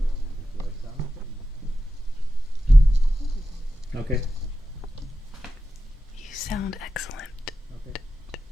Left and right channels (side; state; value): both; normal; correlation 0.92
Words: Okay. You sound excellent.